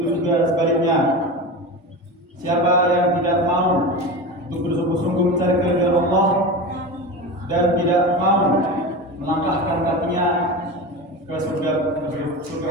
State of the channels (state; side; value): normal; both; correlation 0.26